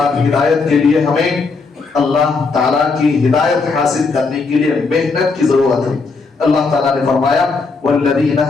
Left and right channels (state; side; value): quieter; right; 4.3 dB